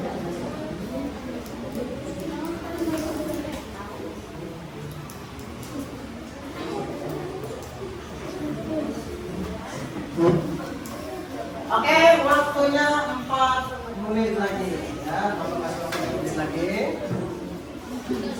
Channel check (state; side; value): identical; both; correlation 1.00